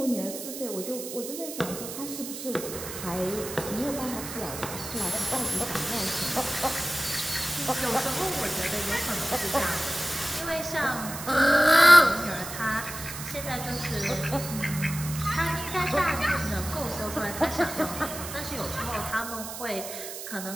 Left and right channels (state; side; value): noise; right; hiss, 9 dB below the sound